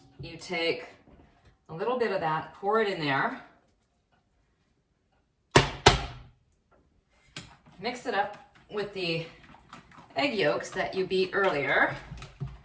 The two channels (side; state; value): both; identical; correlation 1.00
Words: you take a little bit of that, pour it in there, mix it up with the egg yolks that you beat earlier.